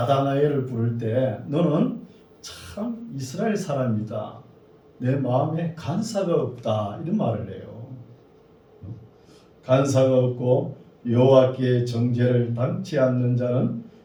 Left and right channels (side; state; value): both; identical; correlation 1.00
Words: 부를 때 너는 참 이스라엘 사람이다. 내 마음에 간사가 없다. 이런 말을 해요. 간사가 없고 여호와께 정죄를 당치 않는 자는